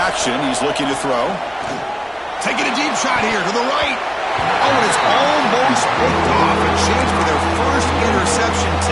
He's looking to throw. Taking a deep shot here to the right. Oh, and it's almost picked off. A chance for their first interception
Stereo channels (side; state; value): both; identical; correlation 1.00